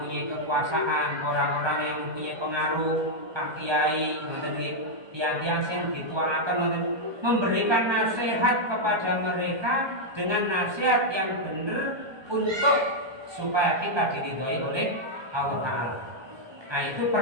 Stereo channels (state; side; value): late; left; 1.2 ms